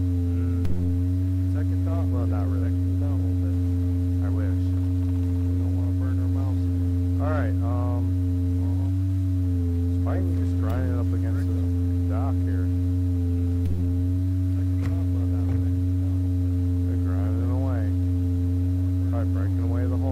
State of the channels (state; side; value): identical; both; correlation 1.00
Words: Second thought, well, not really. Cool down a little bit. I wish. We don't want to burn our mouths again. All right. It's fine. Just grinding it up against the dock here. They're grinding away. Probably breaking away the